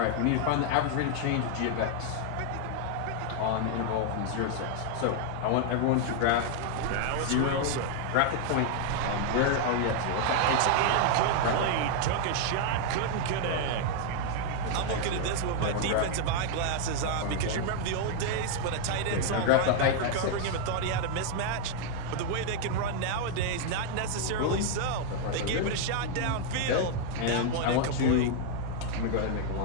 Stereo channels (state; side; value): different; both; correlation 0.00